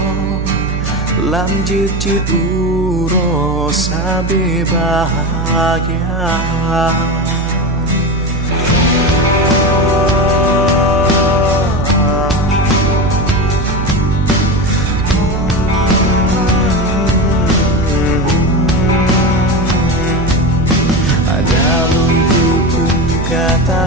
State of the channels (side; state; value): right; noise; hum, 3 dB below the sound